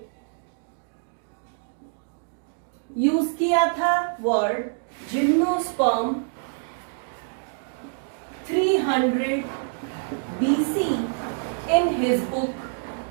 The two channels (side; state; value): left; silent; digital silence